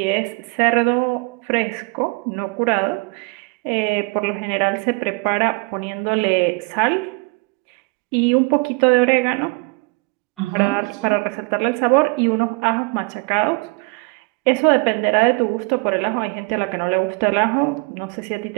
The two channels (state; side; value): quieter; left; 30.3 dB